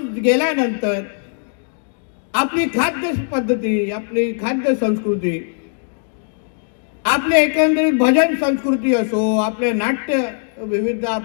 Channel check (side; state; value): right; silent; 66 dB below the other